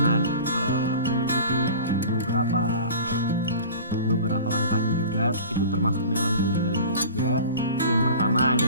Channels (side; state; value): both; inverted; correlation -0.39